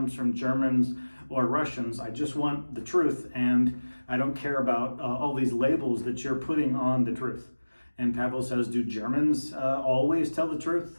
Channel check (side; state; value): both; inverted; correlation -1.00